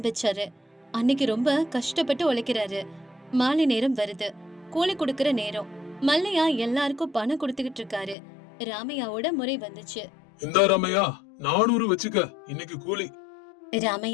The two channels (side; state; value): right; drops out; at 8.2 s